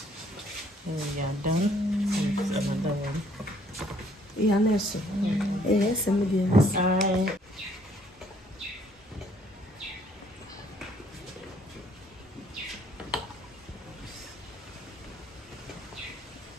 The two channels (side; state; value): both; normal; correlation 0.63